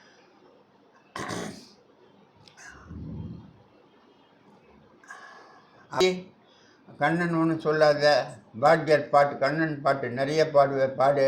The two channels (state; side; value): identical; both; correlation 1.00